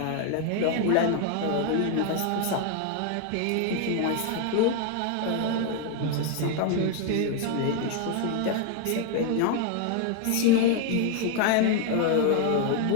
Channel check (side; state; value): both; different; correlation 0.00